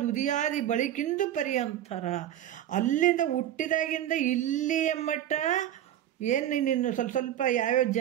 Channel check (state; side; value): quieter; left; 11.6 dB